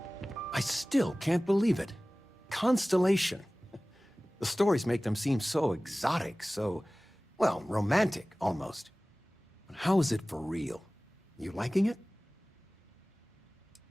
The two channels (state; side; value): normal; both; correlation 0.98